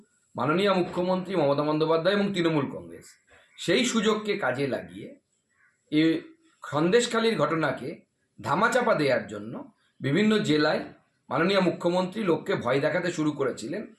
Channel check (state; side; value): identical; both; correlation 1.00